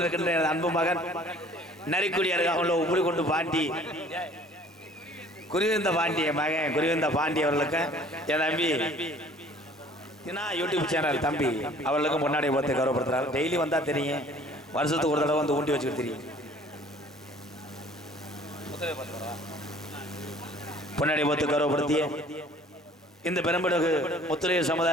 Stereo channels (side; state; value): both; normal; correlation 0.52